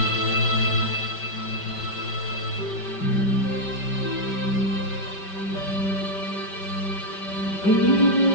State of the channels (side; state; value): right; late; 5.2 ms